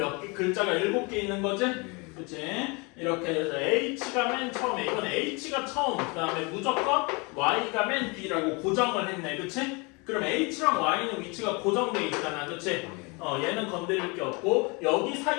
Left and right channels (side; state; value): right; quieter; 29.2 dB